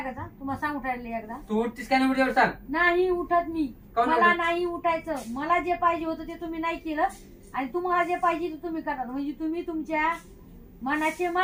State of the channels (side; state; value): both; identical; correlation 1.00